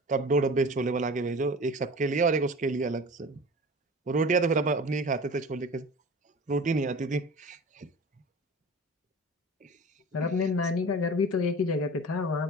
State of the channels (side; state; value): both; normal; correlation 0.38